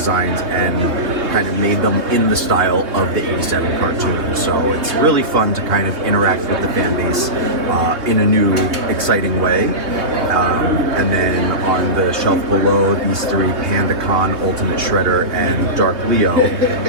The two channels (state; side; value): late; left; 3.4 ms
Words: and kind of made them in the style of the 87 cartoon. So it's really fun to kind of interact with the fan base in a new, exciting way. And then on the shelf below, these 3, PandaCon, Ultimate Shredder, and Dark Leo.